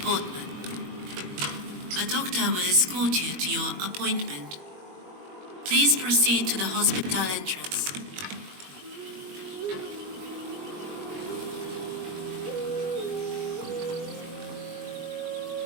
Portman. A doctor will escort you to your appointment. Please proceed to the hospital entrance.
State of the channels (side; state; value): left; late; 21 ms